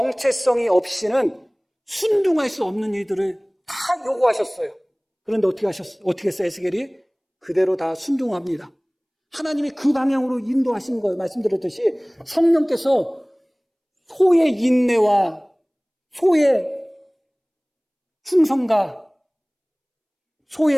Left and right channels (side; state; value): both; identical; correlation 1.00